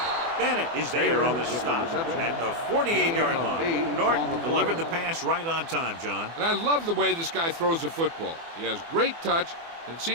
Bennett is there on the stop at the 48-yard line. Norton delivered the pass right on time, John. And I love the way this guy throws the football. He has great touch and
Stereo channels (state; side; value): late; left; 24 ms